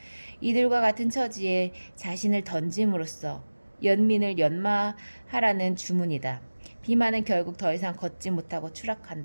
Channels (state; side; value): inverted; both; correlation -1.00